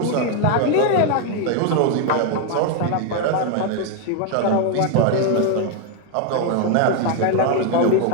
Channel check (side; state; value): both; different; correlation 0.01